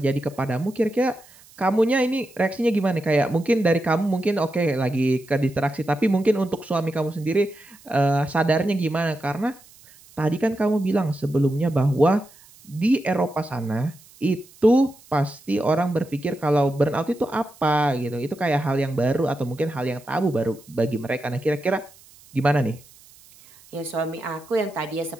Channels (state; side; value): noise; right; hiss, 25 dB below the sound